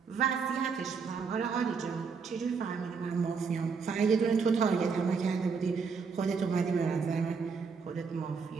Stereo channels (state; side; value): quieter; left; 5.5 dB